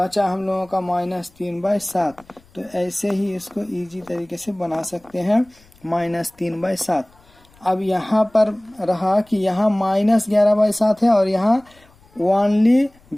हम लोगों का -3/7। तो ऐसे ही इसको इजी तरीके से बना सकते हैं -3/7। अब यहाँ पर रहा कि यहाँ -11/7 है और यहाँ ओनली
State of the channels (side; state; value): left; noise; rumble, 30 dB below the sound